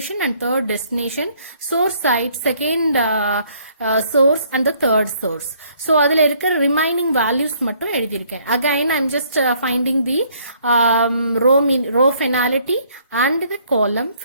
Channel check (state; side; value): inverted; both; correlation -0.64